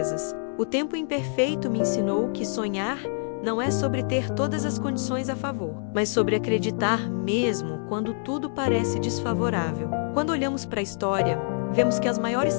O tempo imperfeito me ensinou que sonhar não é sobre ter todas as condições a favor, mas sobre acreditar mesmo quando tudo parece desfavorável. Quando olhamos para a história, vemos que as maiores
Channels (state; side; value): silent; right; 61 dB below the other